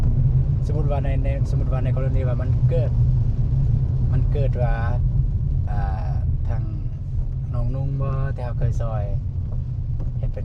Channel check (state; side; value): identical; both; correlation 1.00